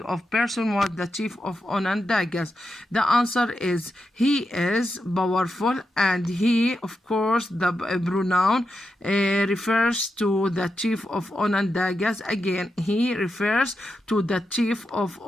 of person was the chief of Onondagas? The answer is he is powerful, and he, of course, the pronoun refers to the chief of Onondagas. Again, he refers to the chief of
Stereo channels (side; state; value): both; normal; correlation 0.87